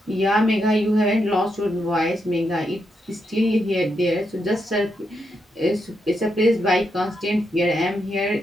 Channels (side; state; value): both; normal; correlation 0.82